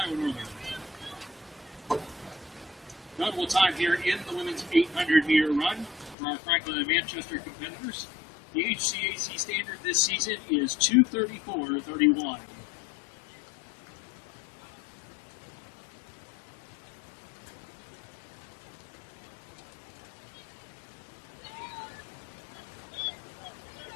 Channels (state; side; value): drops out; right; at 6.2 s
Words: Northern. Notable time here in the women's 800-meter run for our Franklin and Manchester competitors. The HCAC standard this season is 2:34.31.